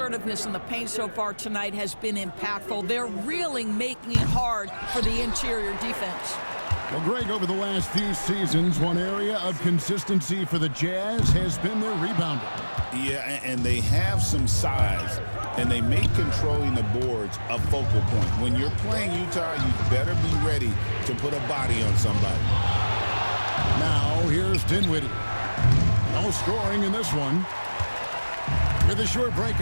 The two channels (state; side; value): inverted; both; correlation -1.00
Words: in the paint so far tonight has been impactful. They're really making it hard for the interior defense. Well, Greg, over the last few seasons, one area of consistency for the Jazz has been their rebounding. Yeah, and they have some size, and they make controlling the boards a focal point. When you're playing Utah, you better be ready to put a body on somebody. Now, here's Dinwiddie. No scoring in this one. With a short break